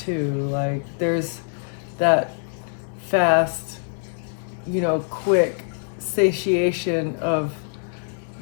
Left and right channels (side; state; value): right; silent; digital silence